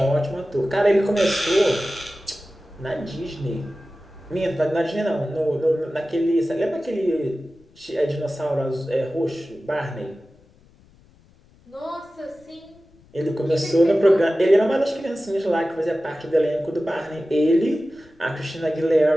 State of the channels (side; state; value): left; noise; rumble, 29 dB below the sound